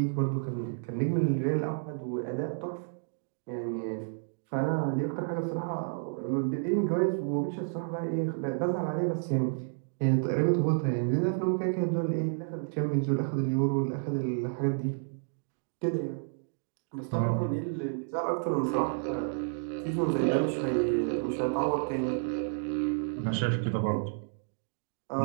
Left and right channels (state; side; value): silent; left; digital silence